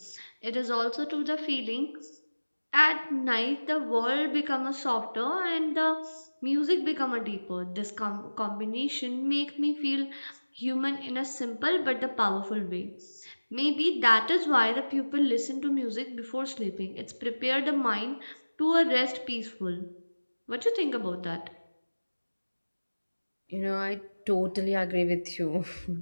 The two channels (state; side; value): inverted; both; correlation -1.00